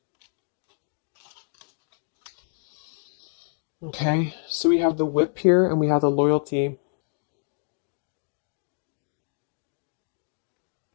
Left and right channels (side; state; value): right; silent; 60 dB below the other